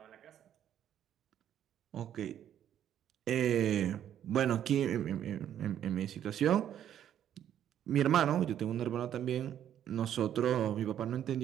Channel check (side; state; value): left; quieter; 10.3 dB